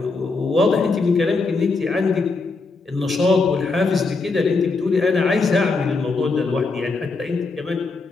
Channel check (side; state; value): right; quieter; 3.9 dB